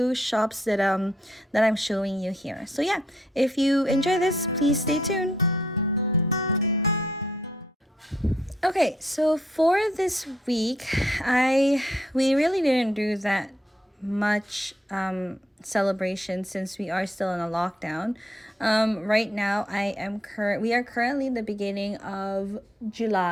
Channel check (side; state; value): both; normal; correlation 0.73